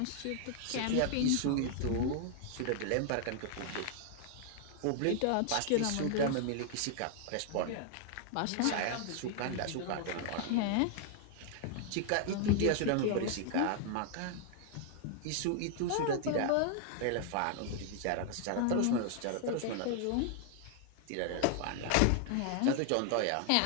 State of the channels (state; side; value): different; both; correlation 0.00